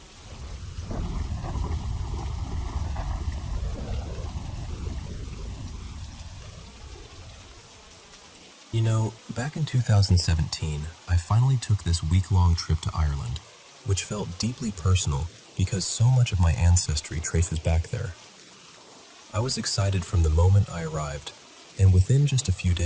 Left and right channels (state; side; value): identical; both; correlation 1.00